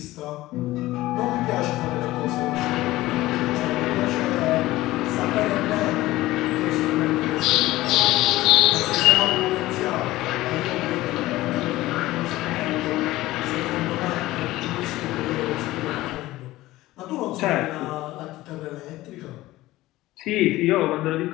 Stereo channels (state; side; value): quieter; right; 17.3 dB